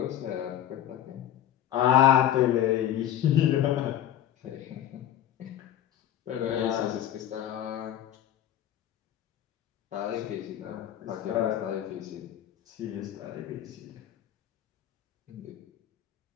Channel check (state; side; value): quieter; right; 11.2 dB